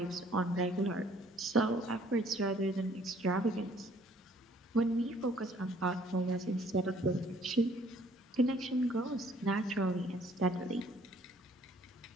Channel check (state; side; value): normal; both; correlation 0.60